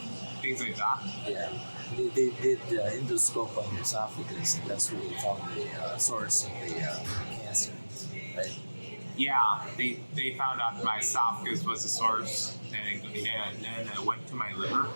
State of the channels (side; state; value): both; inverted; correlation -1.00